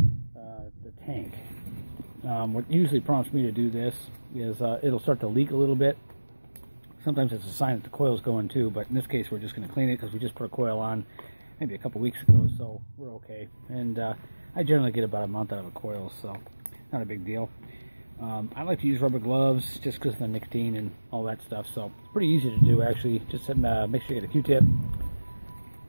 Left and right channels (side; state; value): both; inverted; correlation -1.00